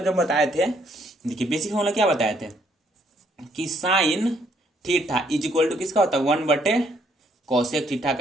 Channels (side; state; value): both; normal; correlation 0.69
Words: जब बताए थे, देखिए बेसिक फॉर्मूला क्या बताए थे कि sine theta is equal to किसका होता है 1/कोसेक थीटा